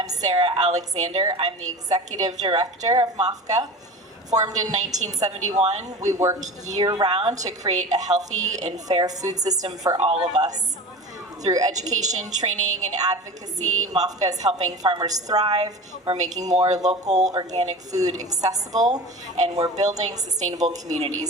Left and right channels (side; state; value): both; normal; correlation 0.33